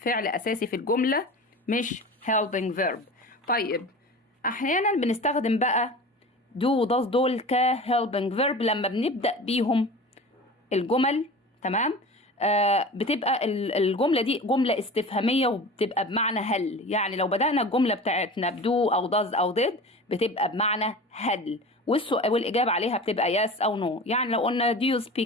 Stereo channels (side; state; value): both; normal; correlation 0.35